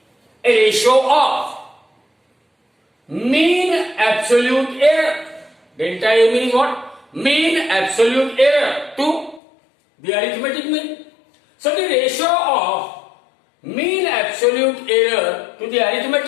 a ratio of mean absolute error. Delta A mean is what? Mean absolute error to the arithmetic mean. So the ratio of mean absolute error to the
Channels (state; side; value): drops out; right; at 9.4 s